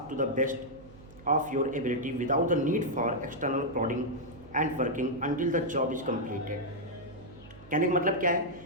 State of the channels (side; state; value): right; noise; hum, 20 dB below the sound